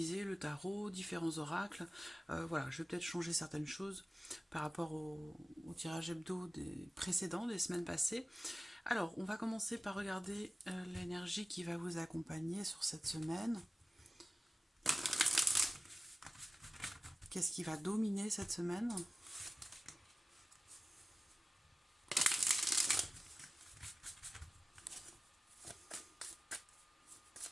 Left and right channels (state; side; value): normal; both; correlation 0.95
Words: le tarot, différents oracles, voilà, je vais peut-être changer certaines choses par rapport au tirage hebdo des précédents, des semaines passées. Alors on va commencer par regarder l'énergie qui va vous accompagner sur cette semaine. Qu'est-ce qui va dominer cette semaine